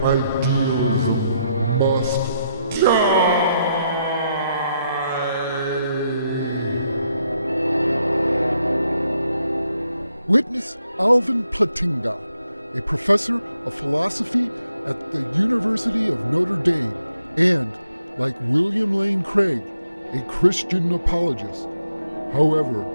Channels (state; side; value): inverted; both; correlation -0.78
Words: idealism must die! Witness Alvin Plantinga, a professor of philosophy at the University of Notre Dame, and, like William Lane Craig, a Christian apologist. However,